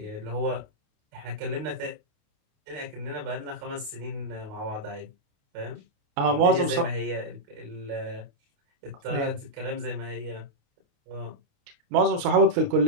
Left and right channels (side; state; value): left; late; 29 ms